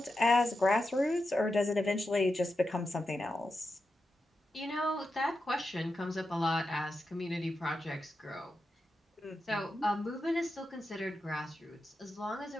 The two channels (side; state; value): both; normal; correlation 0.89